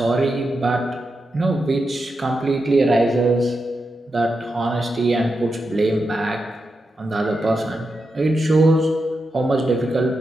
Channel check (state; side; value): normal; both; correlation 0.87